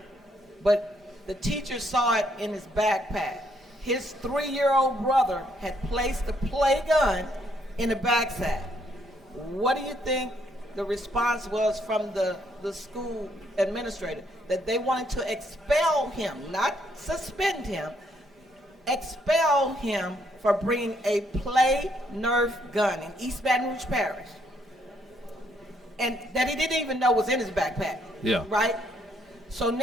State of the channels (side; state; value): both; normal; correlation 0.71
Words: But the teacher saw it in his backpack. His 3-year-old brother had placed the play gun in the backpack. What do you think the response was from the school administrator? That they wanted to expel him, not suspend him, expel him for bringing a play Nerf gun in East Baton Rouge Parish. And that he didn't even know was in his backpack. Yeah. Right? So